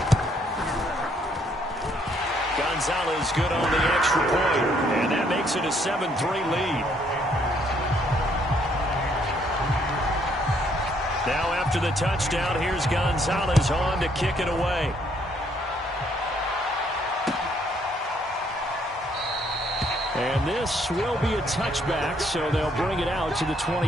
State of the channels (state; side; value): normal; both; correlation 0.68